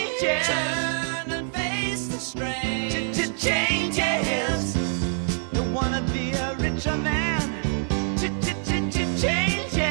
and face the strain. Changes. Don't wanna be a richer man. Changes.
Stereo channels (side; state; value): left; silent; digital silence